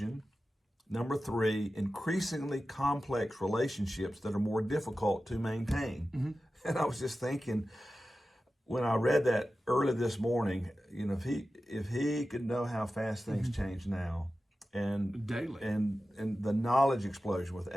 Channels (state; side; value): normal; both; correlation 0.94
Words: Number three, increasingly complex relationships that are more difficult to maintain. And I was just thinking, when I read that early this morning, if he could know how fast things change now, and daily, and the knowledge explosion with